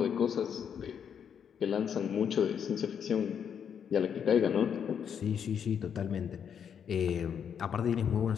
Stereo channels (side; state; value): right; quieter; 7.9 dB